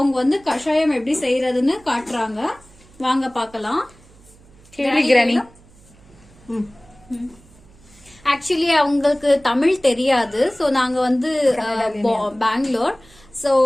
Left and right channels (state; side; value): noise; right; hum, 26 dB below the sound